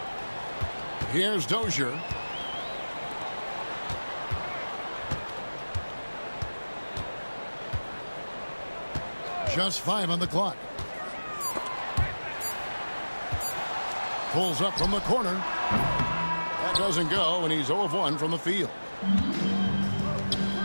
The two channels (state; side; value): inverted; both; correlation -1.00